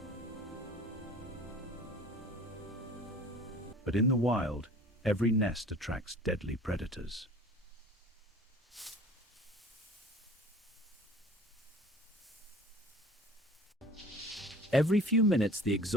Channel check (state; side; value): normal; both; correlation 0.45